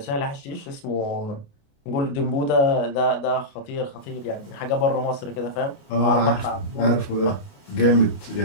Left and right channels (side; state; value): right; late; 29 ms